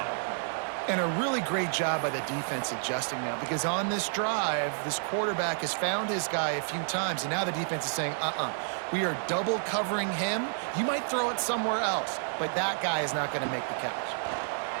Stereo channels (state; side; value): silent; left; digital silence